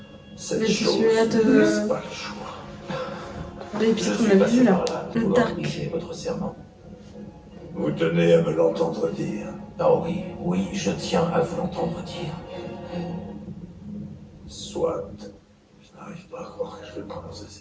Cette Mais c'est chose celui-là de- ne laisse pas le choix. L'épisode Je qu'on suis a passé vu là. par là Le pour Dark. organiser votre serment. Vous tenez à me l'entendre dire. Ah oui, oui, je tiens à vous l'entendre dire. Soit. Je n'arrive pas à croire que je vais prononcer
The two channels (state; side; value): identical; both; correlation 1.00